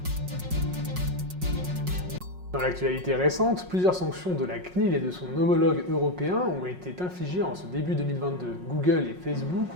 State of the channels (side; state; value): left; late; 5.5 ms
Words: Dans l'actualité récente, plusieurs sanctions de la CNIL et de son homologue européen ont été infligées en ce début 2022. Google et Facebook